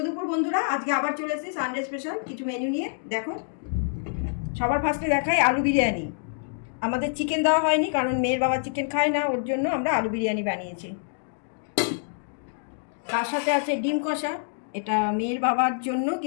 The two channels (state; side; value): silent; right; digital silence